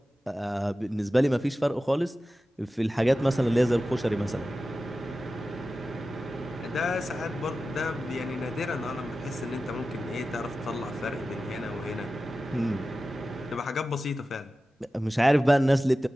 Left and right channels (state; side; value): normal; both; correlation 0.94